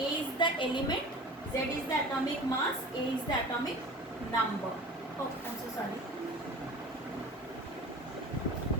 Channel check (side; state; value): both; normal; correlation 0.39